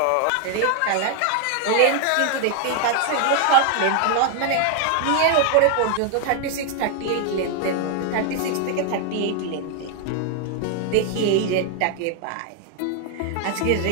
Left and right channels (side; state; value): both; different; correlation 0.00